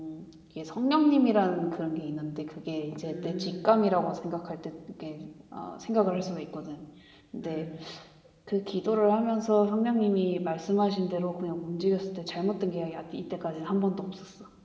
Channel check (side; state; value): both; identical; correlation 1.00